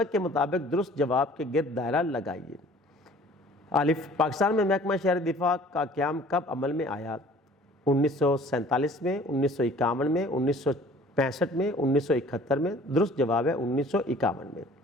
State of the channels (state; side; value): normal; both; correlation 0.51